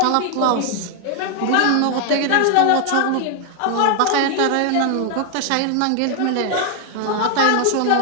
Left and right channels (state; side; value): different; both; correlation 0.00